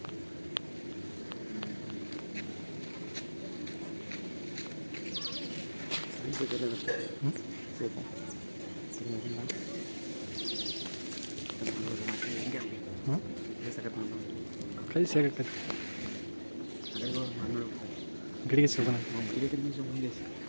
ಪ್ರೈಸ್ ಹೇಗೆ ಗಿಡಿಗೆ ಸಿಗೋಣ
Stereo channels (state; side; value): inverted; both; correlation -1.00